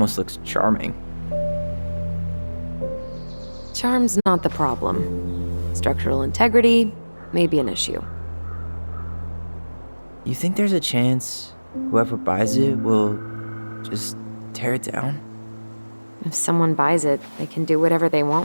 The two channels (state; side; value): inverted; both; correlation -1.00